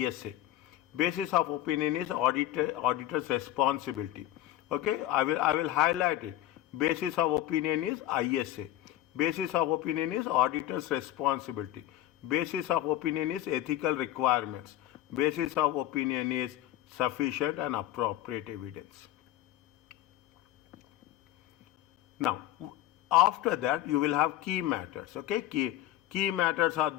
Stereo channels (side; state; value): right; quieter; 13.8 dB